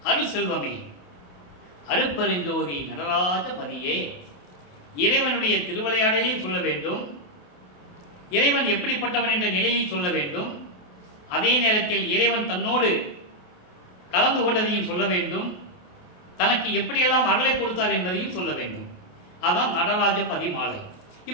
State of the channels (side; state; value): right; late; 28 ms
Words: அருள் செல்வமே, அருட்பெருஞ்சோதி நடராஜ பதியே. இறைவனுடைய திருவிளையாடலையும் சொல்ல வேண்டும், இறைவன் எப்படிப்பட்டவன் என்ற நிலையை சொல்ல வேண்டும், அதே நேரத்தில் இறைவன் தன்னோடு கலந்து கொண்டதையும் சொல்ல வேண்டும், தனக்கு எப்படியெல்லாம் அருளை கொடுத்தார் என்பதையும் சொல்ல வேண்டும். அதான் நடராஜ பதி மாலை.